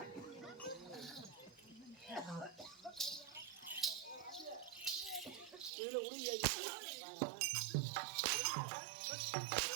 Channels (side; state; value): left; drops out; at 5.7 s